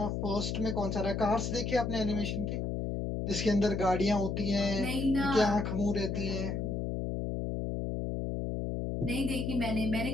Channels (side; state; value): left; noise; hum, 2 dB below the sound